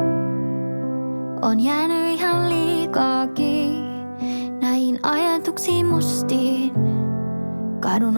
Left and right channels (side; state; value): both; inverted; correlation -1.00